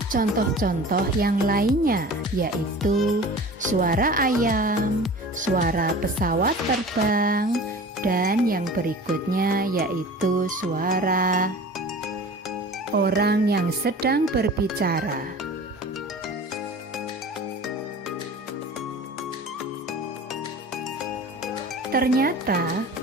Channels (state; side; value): normal; both; correlation 0.40